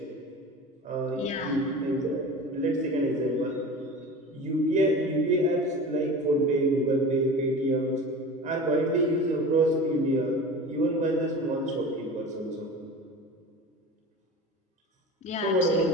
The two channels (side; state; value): both; normal; correlation 0.35